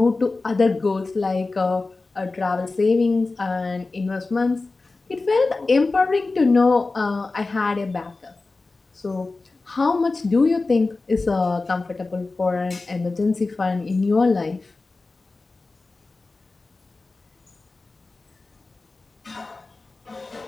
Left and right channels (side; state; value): right; quieter; 3.6 dB